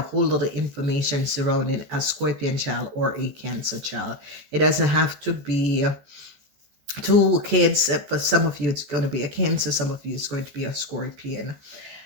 whole lot of information surrounding a Scorpion child or a Cancer child. It doesn't have to be two kids. For some of you, it's going to be a Cancer. Some of you, it's going to be a Scorpion.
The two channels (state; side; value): late; left; 14 ms